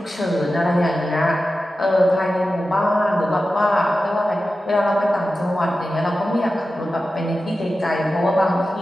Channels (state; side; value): normal; both; correlation 0.93